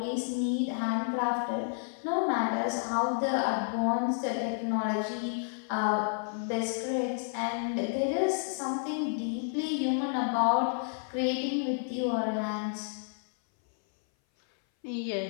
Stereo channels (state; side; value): silent; right; 57 dB below the other